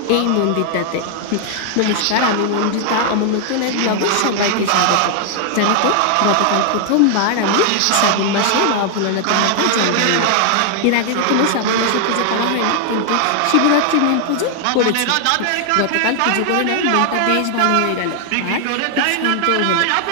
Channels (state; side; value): different; both; correlation 0.00